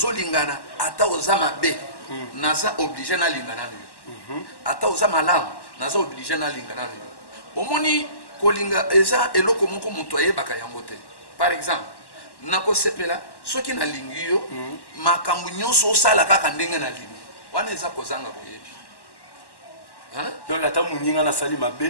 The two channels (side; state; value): right; late; 1.1 ms